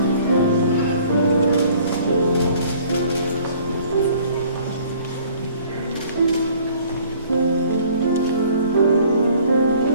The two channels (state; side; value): inverted; both; correlation -0.55